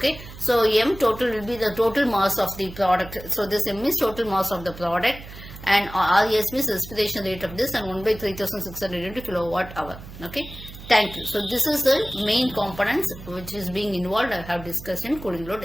So M total will be the total mass of the product. So this M is total mass of the product, and RES means respiration rate of this, and 1 by 3600 into kilowatt hour. Okay. Thank you. So this is the main components which is being involved. I have discussed in cooling load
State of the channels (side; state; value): right; noise; hum, 15 dB below the sound